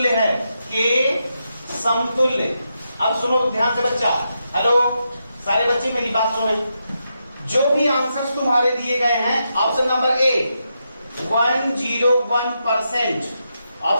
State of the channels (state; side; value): inverted; both; correlation -0.84